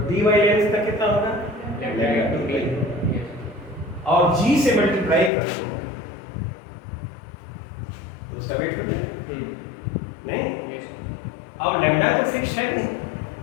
dy लेंथ का कितना होगा, लैम्डा, और g से मल्टीप्लाई कर दो तो उसका वेट हो जाए, नहीं। और लैम्डा तो फिक्स है नहीं,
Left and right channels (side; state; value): right; drops out; at 5.3 s